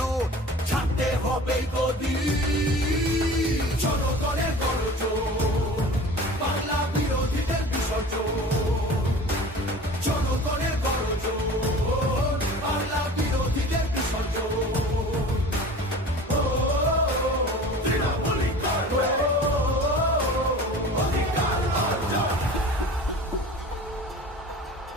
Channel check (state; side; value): normal; both; correlation 0.40